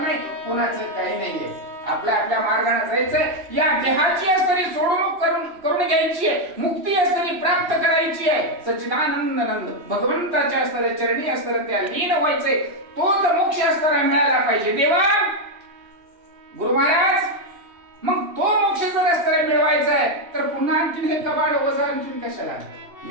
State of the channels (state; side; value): late; left; 3.1 ms